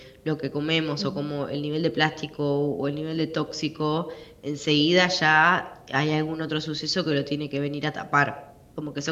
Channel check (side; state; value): both; identical; correlation 1.00